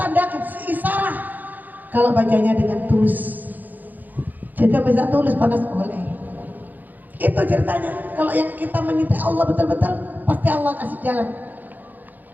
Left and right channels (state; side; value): late; left; 0.084 ms